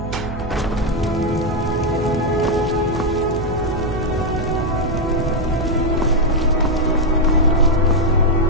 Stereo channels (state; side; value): noise; right; hum, 8 dB below the sound